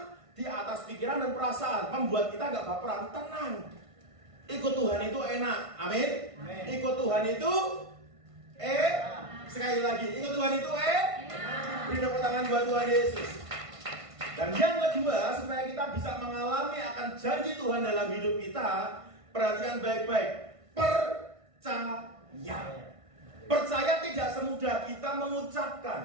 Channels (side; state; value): left; late; 1.5 ms